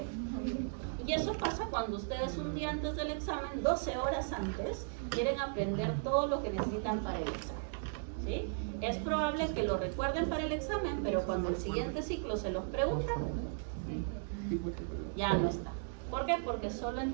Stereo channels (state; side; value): silent; left; digital silence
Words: Y eso pasa cuando ustedes un día antes del examen, 12 horas antes, quieren aprender todo lo que necesitan para el examen. ¿Sí? Es probable que lo recuerden para el examen, pero cuando el siguiente ciclo se los preguntan, ya no está. ¿Por qué? Porque solo